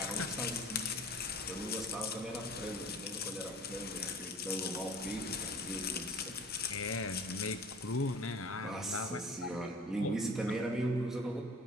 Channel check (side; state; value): both; normal; correlation 0.46